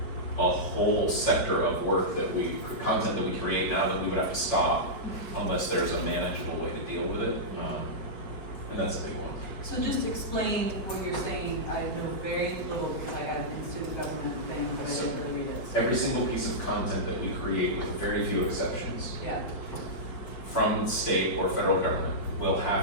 a whole sector of work content that we create now that we would have to stop unless there's a manageable way to deal with it. And that's a big one. So just explain what you're saying. I know very little because I got an student government thing, but I didn't really read it. Every single piece of content that we create, with very few exceptions, from state or federal government, will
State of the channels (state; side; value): late; right; 5.1 ms